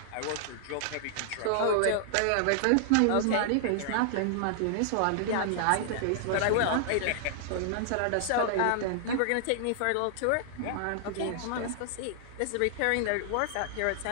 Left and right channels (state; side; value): different; both; correlation -0.01